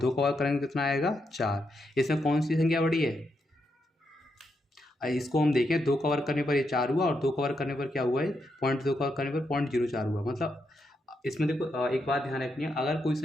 का वर्ग करेंगे कितना आएगा, 4। इसमें कौन सी संख्या बड़ी है, इसको हम देखें, 2 का वर्ग करने पर ये 4 हुआ, और 2 का वर्ग करने पर क्या हुआ है, 0.2 का वर्ग करने पर 0.04 हुआ। मतलब इसमें देखो एक बात ध्यान रखनी है, अगर कोई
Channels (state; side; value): normal; both; correlation 0.82